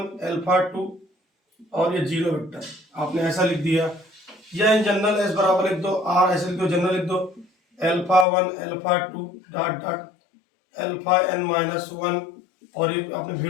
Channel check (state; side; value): drops out; right; at 8.2 s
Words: α2 और ये 0 वेक्टर, आपने ऐसा लिख दिया। या इन जनरल एस बराबर लिख दो, R ऐसे लिख दो, जनरल लिख दो, α1 α2 डॉट डॉट αn-1, और ये आपने